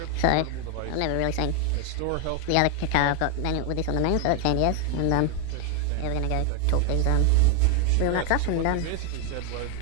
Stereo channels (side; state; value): both; different; correlation 0.01